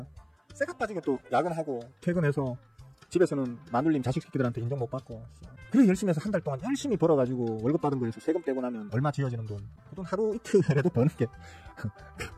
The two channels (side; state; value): both; identical; correlation 1.00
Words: 쇠가 빠지게 또 야근하고 퇴근해서 집에서는 마눌님 자식 새끼들한테 인정 못 받고, 그래 열심히 해서 한 달 동안 열심히 벌어가지고 월급 받은 거에서 세금 떼고 나면 얼마 지어지는 돈, 그 돈 하루 이틀에도 버는 게